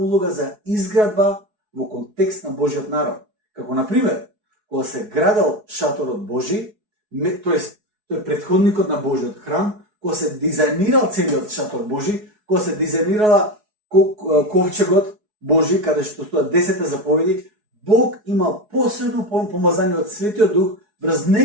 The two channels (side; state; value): left; late; 4.7 ms